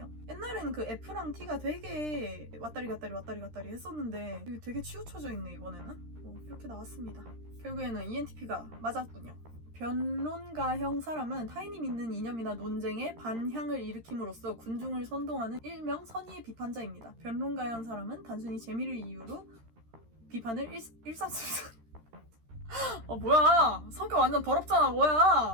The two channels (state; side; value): late; left; 13 ms